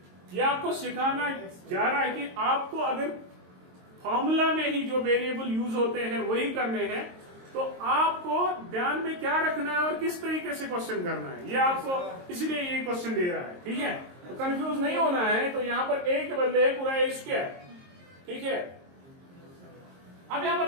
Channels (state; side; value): late; left; 22 ms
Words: ये आपको सिखाना जा रहा है कि आपको अगर फॉर्मूला में ही जो वेरिएबल यूज होते हैं वही करने हैं, तो आपको ध्यान में क्या रखना है और किस तरीके से क्वेश्चन करना है, ये आपको इसलिए ये क्वेश्चन दे रहा है। ठीक है, तो कंफ्यूज नहीं होना है। तो यहां पर ए के बदले है पूरा ए स्क्वायर, ठीक है? अब यहां